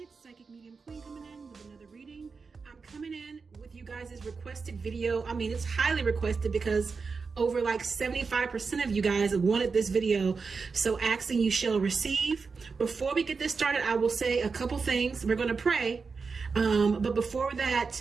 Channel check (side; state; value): left; quieter; 4.8 dB